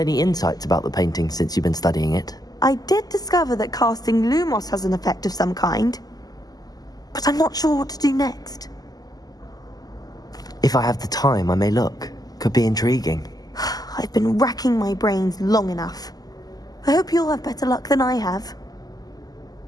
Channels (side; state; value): right; late; 0.18 ms